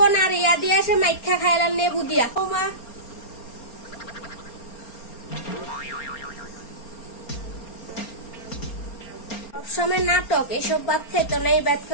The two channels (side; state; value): right; late; 4.3 ms